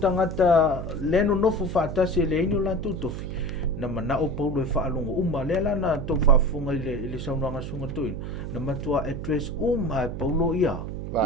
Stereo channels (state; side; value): noise; right; hum, 6 dB below the sound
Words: leno no fa tasi le ino la tu tofi na mana o Paulo e fa alongo uma le la na to fa funga le saunanga sunga tuin na matua address Paulo ia